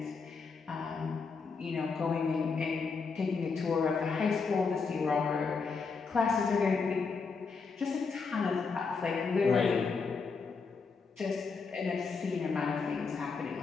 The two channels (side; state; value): right; quieter; 4.9 dB